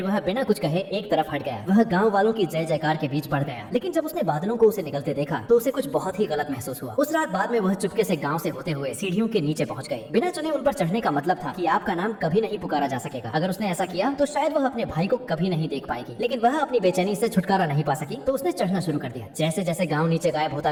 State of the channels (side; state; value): both; identical; correlation 1.00